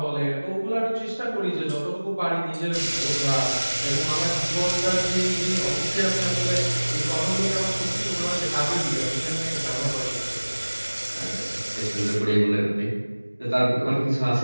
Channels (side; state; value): both; inverted; correlation -1.00